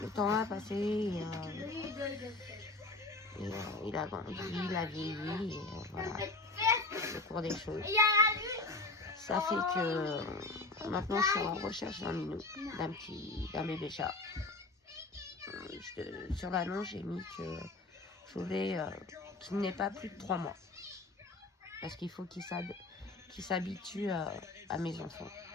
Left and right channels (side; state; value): right; quieter; 3.2 dB